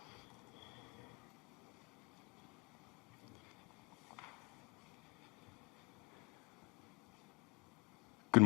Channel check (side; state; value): right; quieter; 28.1 dB